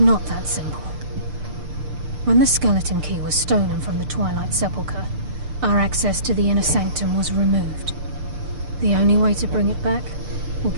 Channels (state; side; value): late; left; 6.7 ms